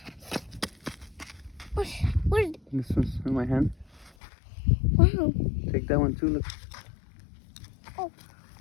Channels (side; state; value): right; drops out; at 4.1 s